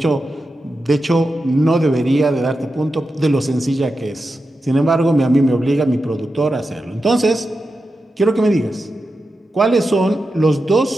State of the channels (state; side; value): normal; both; correlation 0.90